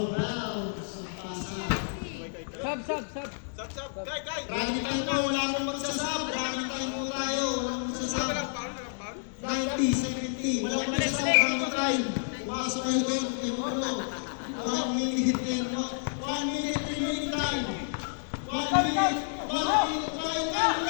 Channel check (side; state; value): right; silent; 58 dB below the other